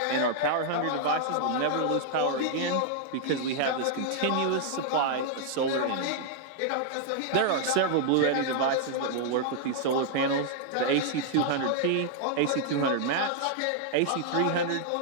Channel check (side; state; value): both; different; correlation -0.01